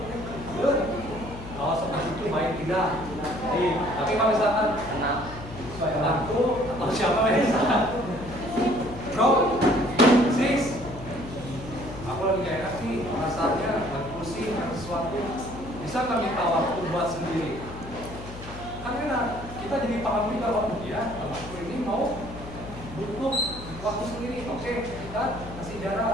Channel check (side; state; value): left; noise; hum, 13 dB below the sound